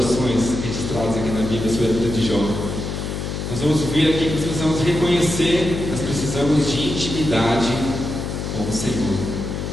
registradas aqui na Bíblia sobre a vida de Jó. Nós vamos ver aqui que nós precisamos reconhecer, nós precisamos de intimidade com o Senhor.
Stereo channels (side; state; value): left; noise; hum, 4 dB below the sound